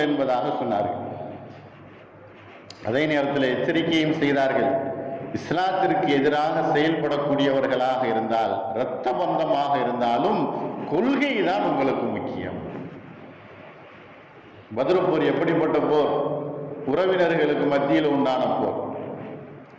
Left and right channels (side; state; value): both; identical; correlation 1.00